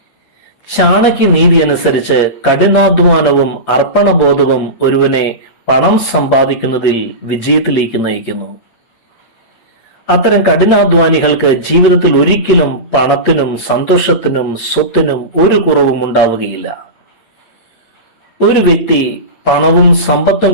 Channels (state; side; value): late; right; 8.7 ms